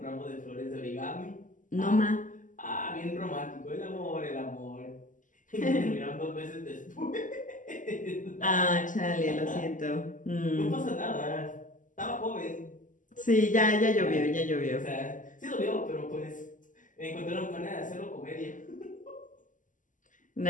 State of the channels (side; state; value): right; late; 0.38 ms